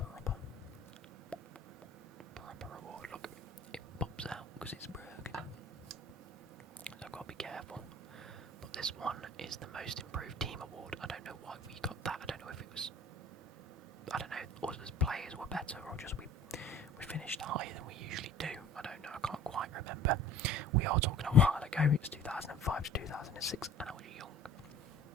award. Look, it pops out because it's broken. So I've got to be careful. But this one is the most improved team award. I don't know why we got that. I don't know if it was, I don't know, us as players were better or just we finished higher than we usually do. I don't know. I can't quite remember. We are talking a while ago. It was 2005 to 2006, and I was young.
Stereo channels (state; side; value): normal; both; correlation 0.47